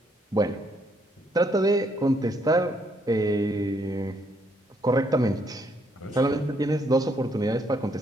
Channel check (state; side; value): normal; both; correlation 0.71